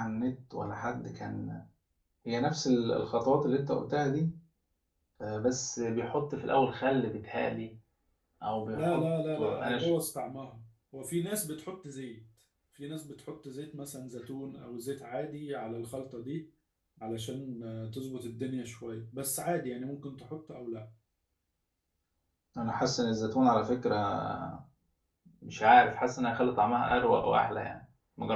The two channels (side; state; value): both; identical; correlation 1.00